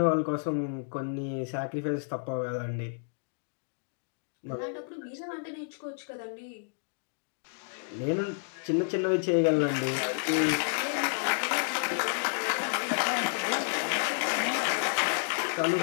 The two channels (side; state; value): right; silent; digital silence